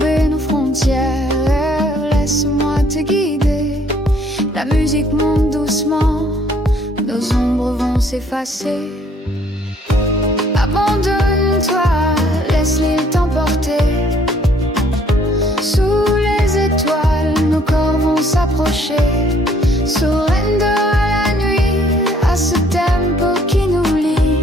nos frontières, laisse-moi te guider. La musique monte doucement, nos ombres vont s'effacer. Abandonne-toi, laisse l'île t'emporter. Sous les étoiles, nos corps vont s'approcher. Surrender à la nuit, à ce tempo qui nous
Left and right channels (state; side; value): normal; both; correlation 0.63